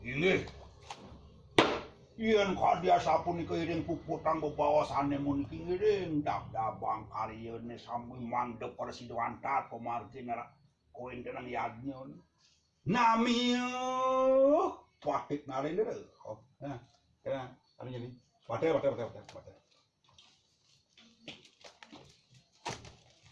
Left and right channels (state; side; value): identical; both; correlation 1.00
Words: Ini. Iyan kadia sapun keiring puputang bebawasane mun kiring dab-dabang kariyene sambil mandep persiduan tat pemargin koin dengan yadnyon. Namiyo pahit narin dulu. Oh, nah, kena anu jadi. Pate.